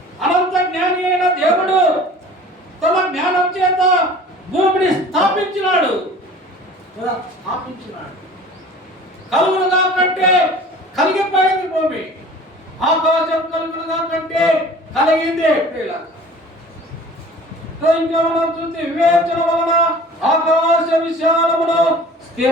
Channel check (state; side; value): normal; both; correlation 0.44